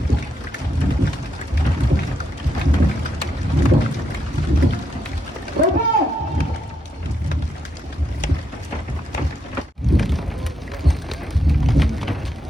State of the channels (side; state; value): both; normal; correlation 0.80